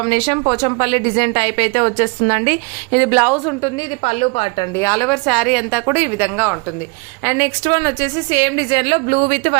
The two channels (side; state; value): left; quieter; 30.8 dB